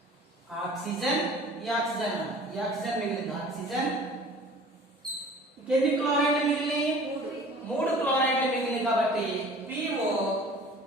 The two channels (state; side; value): normal; both; correlation 0.46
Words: ఆక్సిజన్, ఈ ఆక్సిజన్ మిగిలింది. ఆక్సిజన్ ఎన్ని క్లోరైడ్లు మిగిలినాయి? 3 క్లోరైడ్లు మిగిలినాయి. కాబట్టి